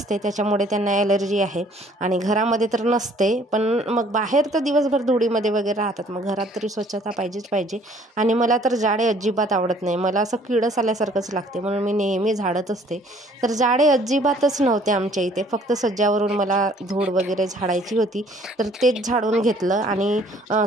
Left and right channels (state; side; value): normal; both; correlation 0.58